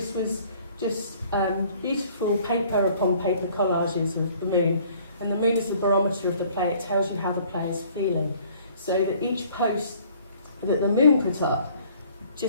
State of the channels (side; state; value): both; inverted; correlation -0.56